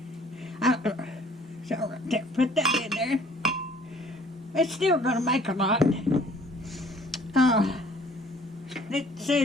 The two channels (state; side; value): normal; both; correlation 0.55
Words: So put that in there. It's still going to make a lot. It